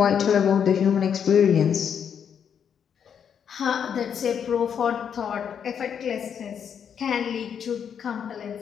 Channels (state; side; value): quieter; right; 7.9 dB